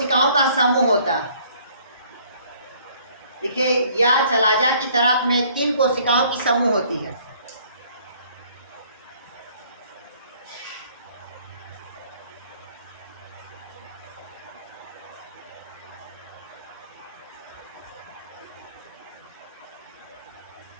का समूह होता है। देखिए, या चलाजा की तरफ में 3 कोशिकाओं की समूह होती है।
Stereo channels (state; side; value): inverted; both; correlation -0.59